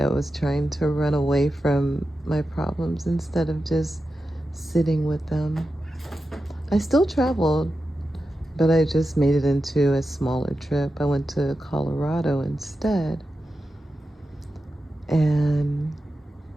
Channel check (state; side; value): normal; both; correlation 0.91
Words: was trying to run away from my problems instead of just sitting with them. I still traveled But I just made it into a smaller trip. I went to Colorado instead. And